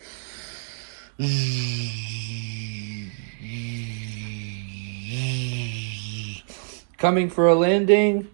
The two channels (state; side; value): silent; left; digital silence